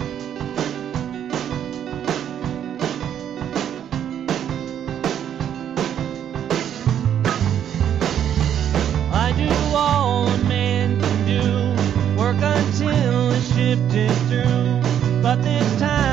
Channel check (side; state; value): left; quieter; 9.6 dB